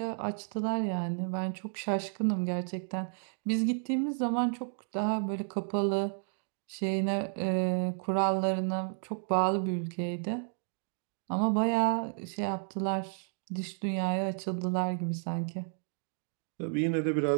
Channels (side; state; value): left; silent; 56 dB below the other